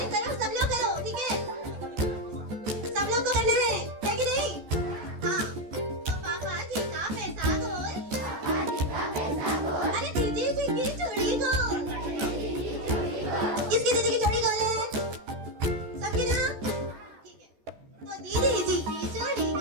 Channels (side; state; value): left; late; 14 ms